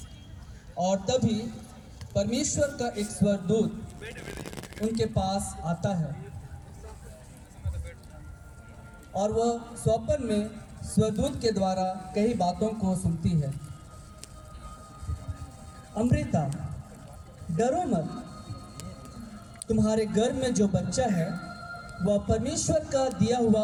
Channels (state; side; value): identical; both; correlation 1.00